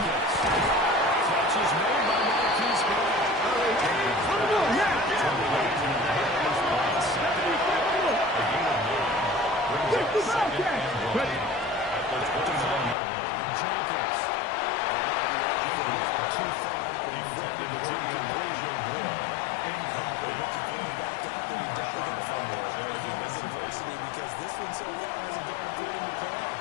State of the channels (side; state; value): right; drops out; at 13.0 s